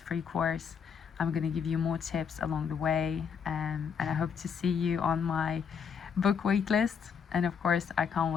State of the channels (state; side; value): quieter; right; 6.8 dB